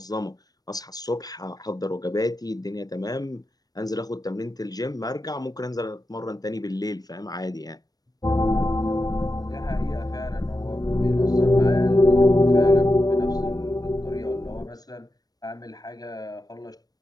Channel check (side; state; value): right; late; 0.19 ms